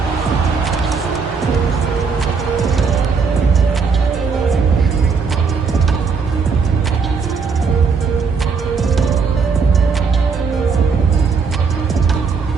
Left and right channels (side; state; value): left; quieter; 5.2 dB